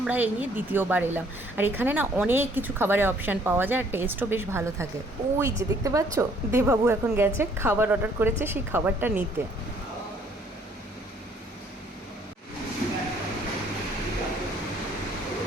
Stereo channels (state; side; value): normal; both; correlation 0.62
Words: এই নিয়ে দ্বিতীয়বার এলাম। আর এখানে না অনেক কিছু খাবারের অপশান পাওয়া যায় আর টেস্টও বেশ ভালো থাকে। ওই যে দেখতে পাচ্ছ, দেবাবু এখন গেছে খাবার অর্ডার করেছে সেই খাবারটা নিতে।